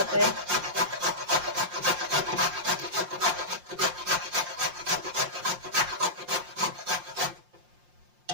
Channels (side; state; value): left; late; 5.7 ms